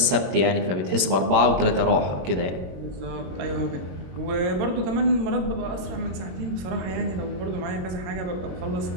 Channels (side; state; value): left; late; 21 ms